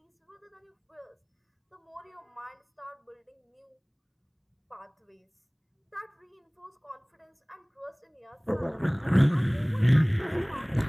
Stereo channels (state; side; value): identical; both; correlation 1.00